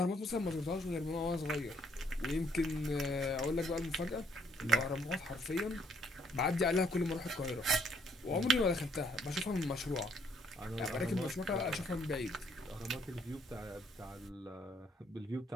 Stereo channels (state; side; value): normal; both; correlation 0.68